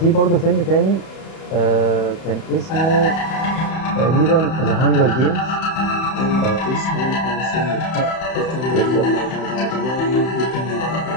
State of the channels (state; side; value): late; right; 31 ms